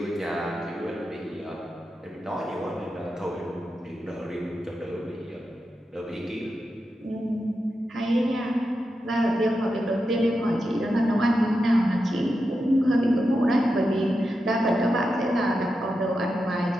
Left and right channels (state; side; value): normal; both; correlation 0.88